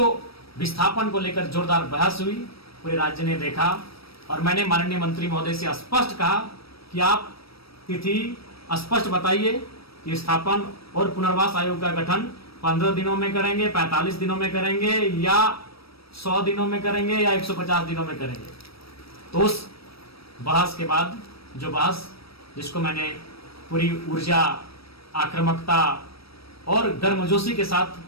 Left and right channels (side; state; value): right; late; 0.76 ms